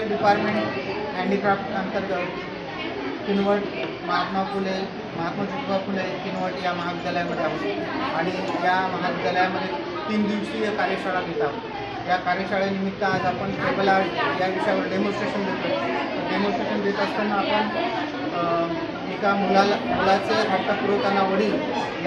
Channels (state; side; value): identical; both; correlation 1.00